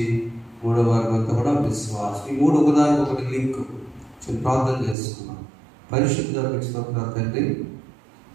మూడవ వారం అంతా కూడా విశ్వాసం. ఈ మూడు ఒకదానికి ఒకటి లింక్. ప్రార్థన చేసుకున్నాం. పరిశుద్ధ స్తోత్రం తండ్రి.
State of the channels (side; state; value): left; drops out; at 5.0 s